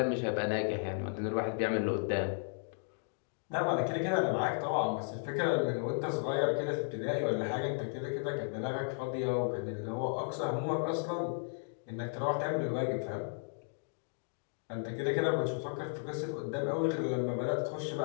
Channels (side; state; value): right; silent; digital silence